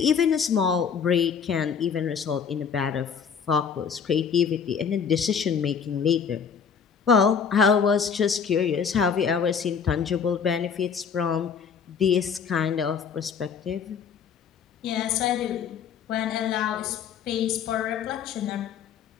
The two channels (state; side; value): quieter; right; 6.8 dB